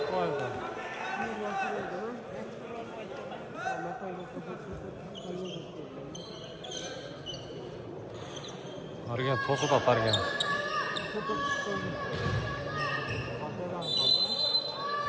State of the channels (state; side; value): identical; both; correlation 1.00